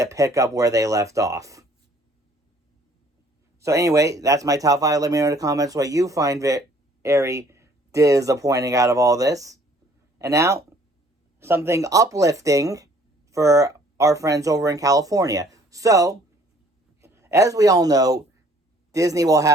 up where they left off. So anyway, that's my top 5. Let me know in the comments what you find very disappointing out of all this. And now, something uplifting for our friends over in California. So, as we all know, Walt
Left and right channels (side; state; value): both; normal; correlation 0.58